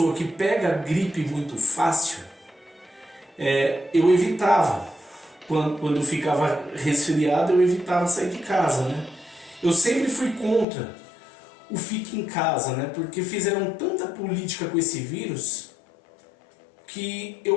que pega gripe muito fácil, eu evitava. Quando eu ficava resfriado, eu evitava sair de casa, né? Eu sempre fui contra o fique em casa, né? Porque fizeram tanta política com esse vírus que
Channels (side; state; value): right; drops out; at 10.7 s